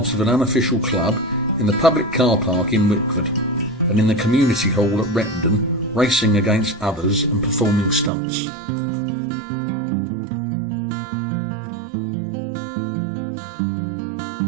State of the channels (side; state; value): left; drops out; at 8.1 s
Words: of an unofficial club in the public car park in Wickford and in the community hall at Rettendon, racing against others and performing stunts.